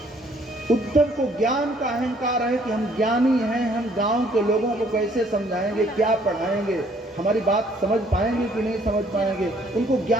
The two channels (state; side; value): normal; both; correlation 0.62